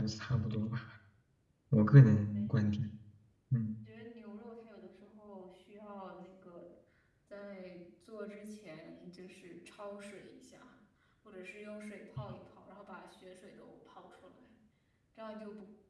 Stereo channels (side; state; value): both; identical; correlation 1.00